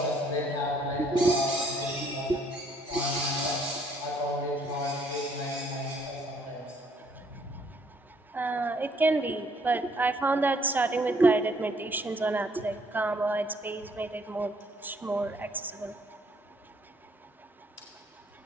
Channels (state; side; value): normal; both; correlation 0.65